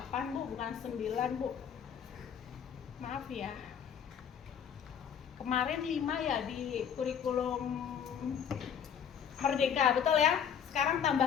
Bu, bukan 9 Bu. Maaf ya. Kemarin 5 ya di kurikulum Merdeka, betul ya? Sekarang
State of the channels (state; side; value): quieter; right; 8.0 dB